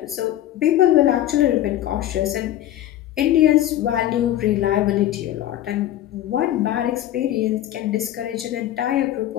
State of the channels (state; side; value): quieter; right; 12.8 dB